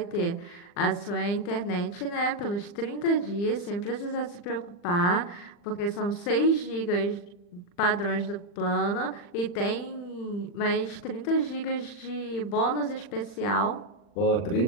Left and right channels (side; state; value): right; late; 40 ms